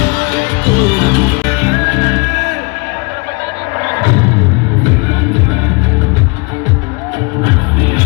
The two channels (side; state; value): right; quieter; 30.2 dB